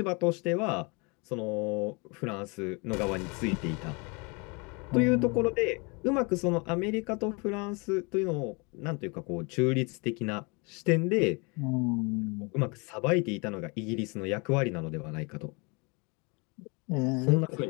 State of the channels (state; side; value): quieter; right; 30.4 dB